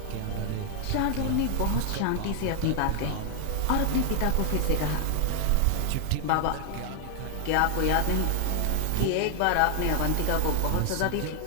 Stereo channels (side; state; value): both; different; correlation 0.00